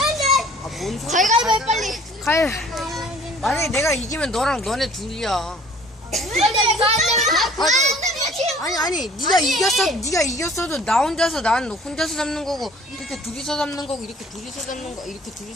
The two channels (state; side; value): normal; both; correlation 0.52